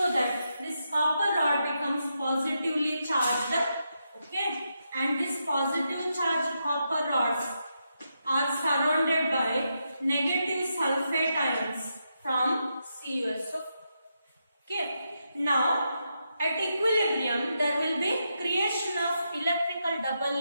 that this copper rod becomes positively charged. Okay, and this positive charged copper rods are surrounded by negative sulfate ions from CuSO4. Okay, now at equilibrium there will be creation of electrical double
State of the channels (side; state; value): both; inverted; correlation -0.84